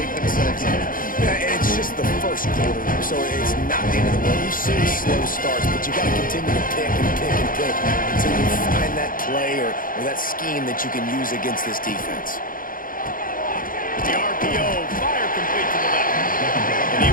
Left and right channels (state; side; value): late; right; 0.40 ms